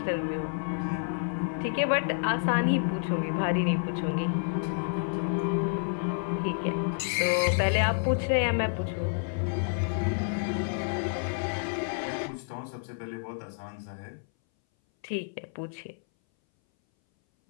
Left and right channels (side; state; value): right; silent; 58 dB below the other